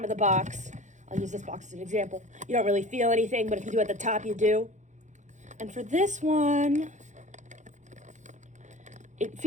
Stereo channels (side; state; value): left; late; 0.35 ms